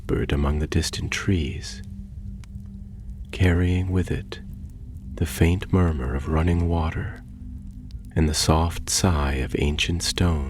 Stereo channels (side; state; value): both; identical; correlation 1.00